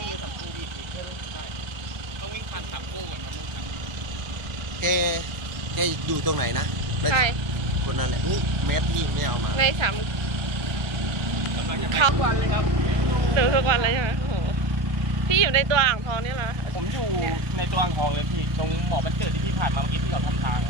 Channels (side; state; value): left; late; 1.2 ms